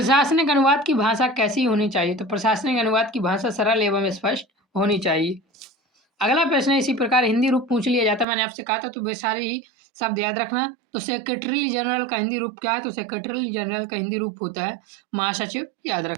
अनुवाद की भाषा कैसी होनी चाहिए, तो प्रशासनिक अनुवाद की भाषा सरल एवं स्पष्ट होनी चाहिए। अगला प्रश्न इसी प्रकार हिंदी रूप पूछ लिया जाता है, मैंने आपसे कहा था तो वे सारे ही शब्द याद रखना। तो सेक्रेटरी जनरल का हिंदी रूप क्या है, तो सेक्रेटरी जनरल का हिंदी रूप होता है महासचिव, याद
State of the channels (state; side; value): drops out; left; at 8.2 s